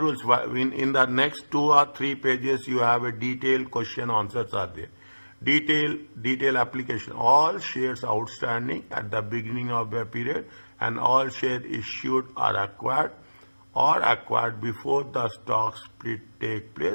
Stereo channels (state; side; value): inverted; both; correlation -1.00